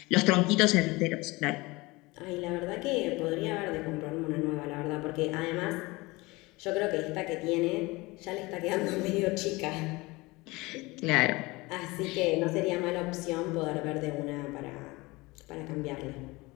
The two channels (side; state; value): right; quieter; 22.8 dB